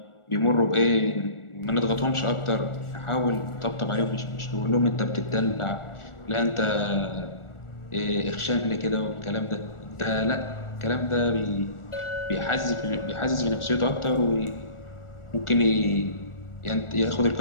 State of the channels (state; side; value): late; right; 1.4 ms